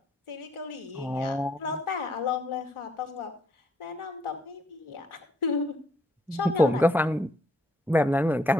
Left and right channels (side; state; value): both; normal; correlation 0.70